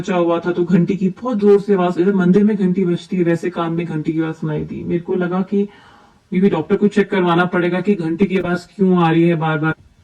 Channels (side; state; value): both; identical; correlation 1.00